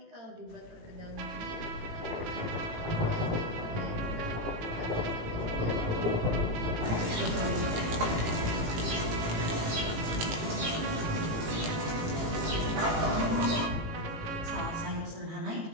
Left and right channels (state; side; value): late; left; 18 ms